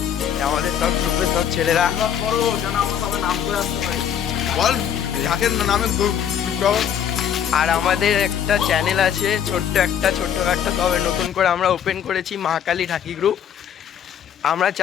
আমাদের সব গ্রুপের সব ছেলেরা। বল ঢাকের নামে আর আমাদের একটা চ্যানেল আছে, ছোট্ট একটা তবে নতুন করে আমরা ওপেন করেছি মা কালী ঠাকুর গ্রুপ। আমরা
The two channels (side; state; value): right; quieter; 8.9 dB